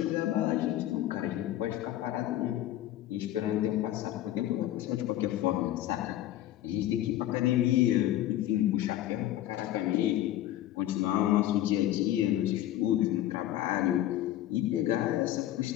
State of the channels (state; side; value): quieter; right; 13.4 dB